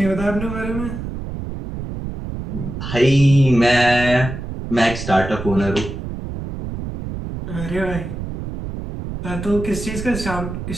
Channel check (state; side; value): noise; right; rumble, 7 dB below the sound